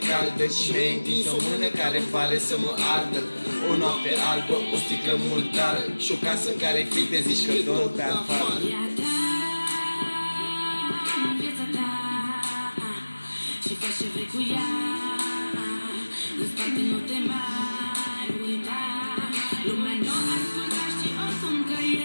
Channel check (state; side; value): inverted; both; correlation -1.00